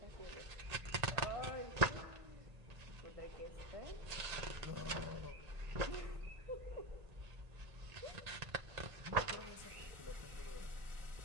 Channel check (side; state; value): left; late; 1.8 ms